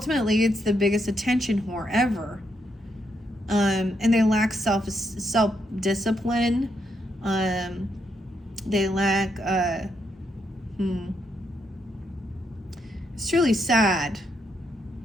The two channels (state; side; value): normal; both; correlation 0.79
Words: it's the biggest attention whore ever. And they lack self-discipline. They lack, it's truly sad,